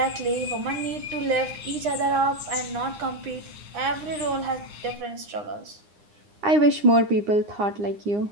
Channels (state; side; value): late; left; 9.8 ms